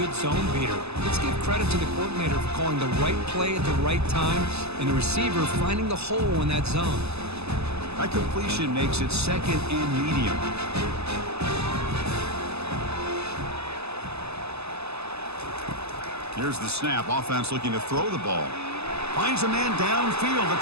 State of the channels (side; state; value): left; late; 0.79 ms